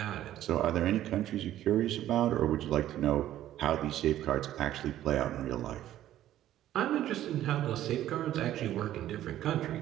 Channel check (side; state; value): left; quieter; 12.8 dB